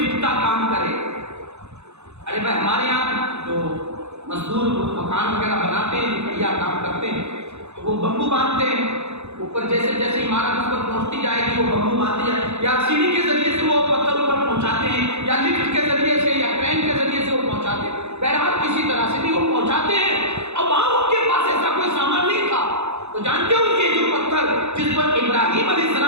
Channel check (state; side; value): late; left; 0.81 ms